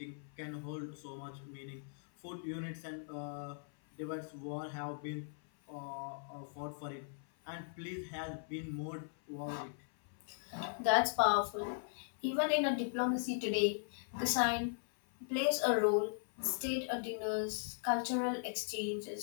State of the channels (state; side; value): silent; right; 52 dB below the other